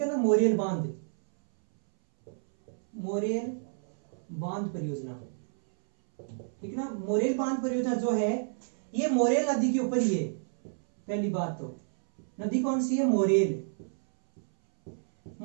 है ना, मोरेल बांध परियोजना, ठीक है ना। मोरेल बांध परियोजना जो है ये मोरेल नदी के ऊपर ही है। पहली बात तो नदी कौन सी है, मोरेल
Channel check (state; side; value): silent; left; 58 dB below the other